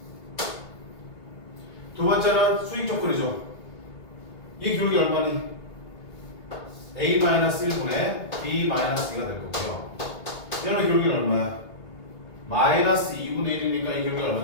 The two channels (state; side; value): late; right; 3.0 ms